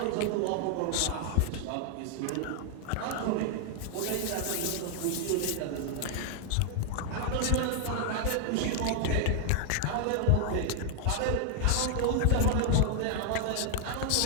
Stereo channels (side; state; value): both; different; correlation -0.01